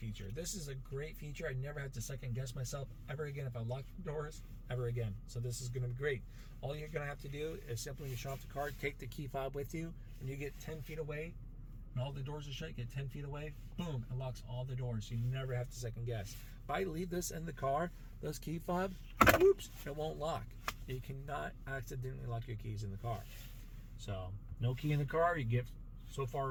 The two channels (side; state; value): both; identical; correlation 1.00